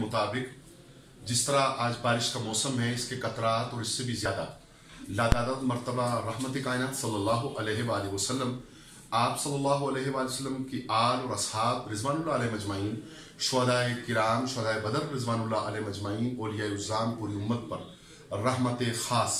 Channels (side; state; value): both; identical; correlation 1.00